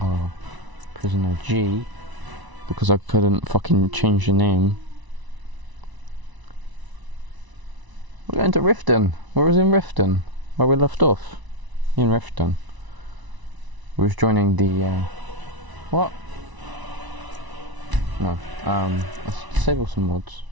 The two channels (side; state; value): left; late; 1.0 ms